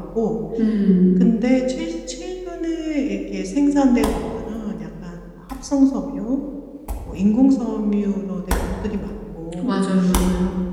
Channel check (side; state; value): both; identical; correlation 1.00